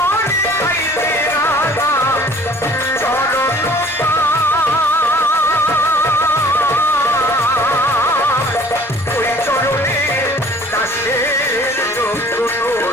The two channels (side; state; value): both; normal; correlation 0.51